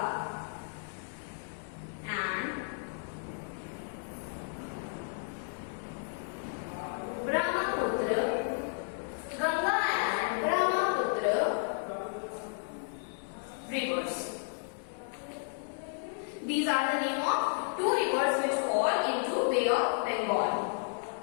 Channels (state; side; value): silent; right; digital silence